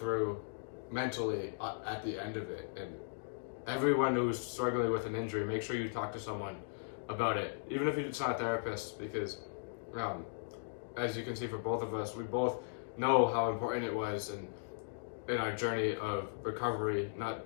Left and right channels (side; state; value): right; silent; digital silence